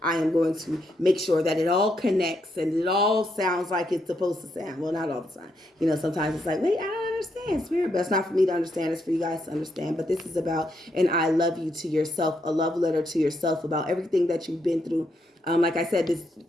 I am going to make sure that it all connects and it all sounds like it's supposed to sound. Well, not all the time. You know, sometimes it's like, wait, I don't understand, spirit. But it's not for me to understand. It's for you guys to understand. But this is about an I love you to yourself, a love letter to yourself about everything that you've been through. Like I said,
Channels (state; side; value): normal; both; correlation 0.78